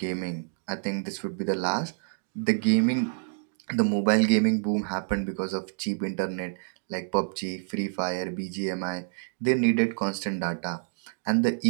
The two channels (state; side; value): silent; left; digital silence